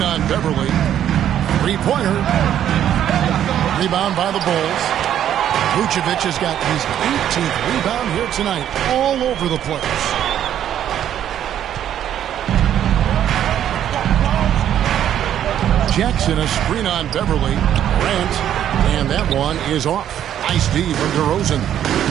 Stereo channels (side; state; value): left; quieter; 10.5 dB